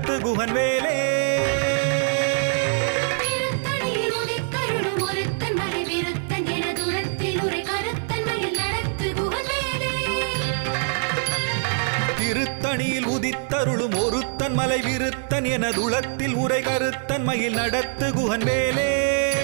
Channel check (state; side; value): silent; left; 60 dB below the other